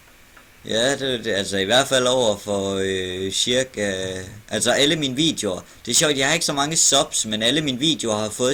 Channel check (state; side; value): identical; both; correlation 1.00